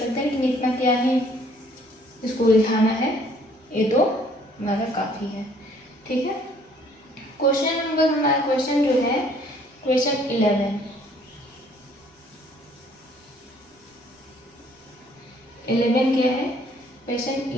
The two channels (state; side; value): normal; both; correlation 0.60